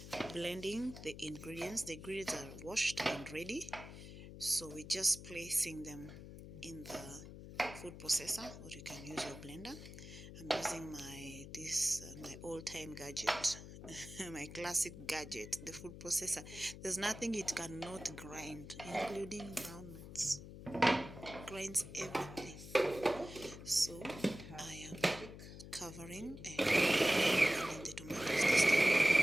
blending the ingredients. The ingredients are washed and ready. So we're just placing them in the food processor, or you can use your blender. I'm using my old-time gadget, my classic gadget, the food processor. There's nothing it cannot grind, including groundnuts. Grinds everything. So I am covering and blending the tomatoes this time.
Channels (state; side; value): noise; left; hum, 13 dB below the sound